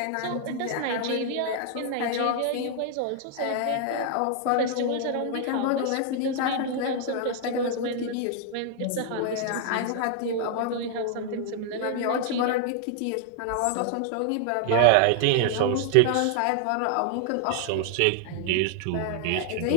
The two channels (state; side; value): different; both; correlation 0.00